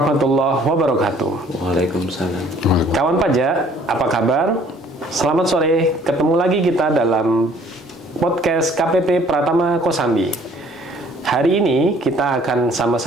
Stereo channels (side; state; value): both; normal; correlation 0.56